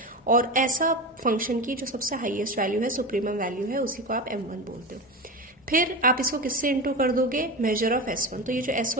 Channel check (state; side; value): normal; both; correlation 0.24